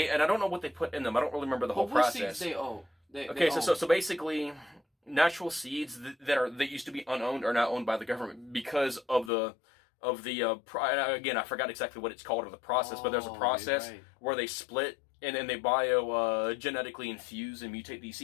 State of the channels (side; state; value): right; drops out; at 9.3 s